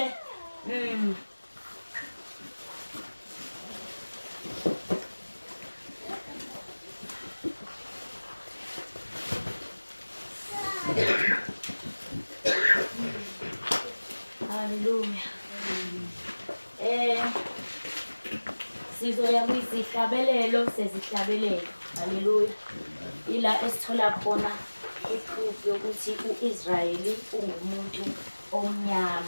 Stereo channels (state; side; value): inverted; both; correlation -1.00